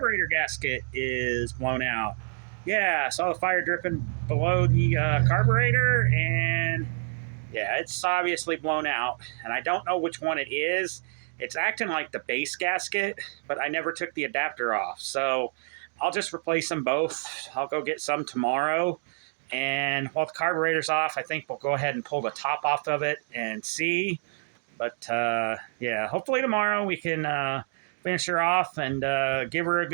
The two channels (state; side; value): silent; left; digital silence